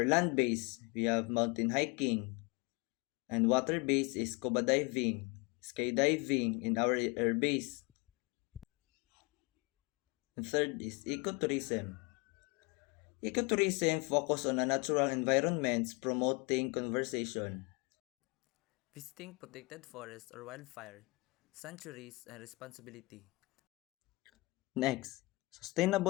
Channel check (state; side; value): quieter; right; 26.2 dB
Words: land base, we have mountain hiking, and water base is scuba diving, skydiving in our air base. And third is ecotourism. Ecotourism focus on a natural environments promoting conservation. Visiting protected forests or wildfire, sanctuaries, and responsibility. Next,